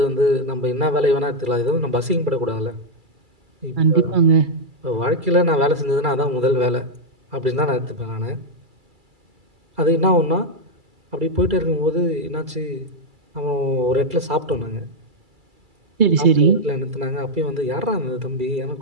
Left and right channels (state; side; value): late; left; 2.3 ms